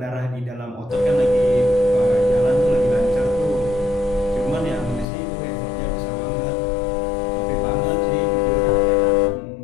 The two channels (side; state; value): right; drops out; at 5.1 s